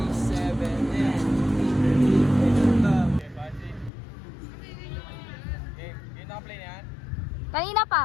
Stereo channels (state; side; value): drops out; right; at 3.9 s